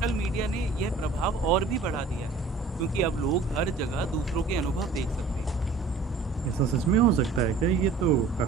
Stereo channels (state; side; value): quieter; left; 4.3 dB